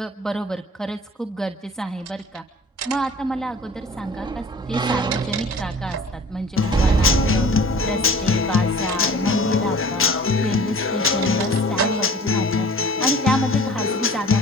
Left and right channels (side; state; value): both; normal; correlation 0.45